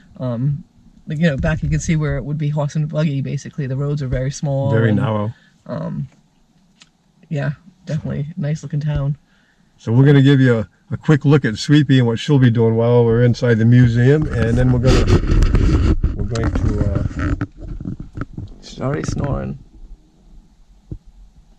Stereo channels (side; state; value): both; identical; correlation 1.00